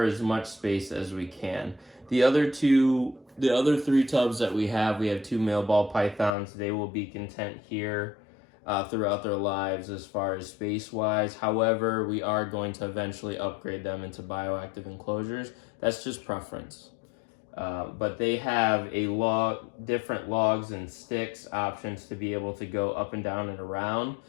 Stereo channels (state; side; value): drops out; right; at 6.3 s